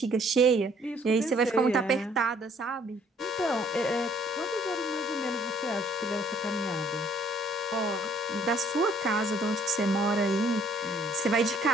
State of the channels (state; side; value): normal; both; correlation 0.61